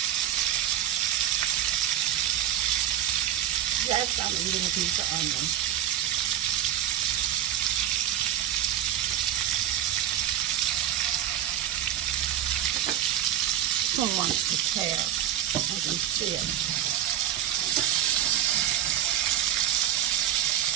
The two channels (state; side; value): quieter; left; 11.4 dB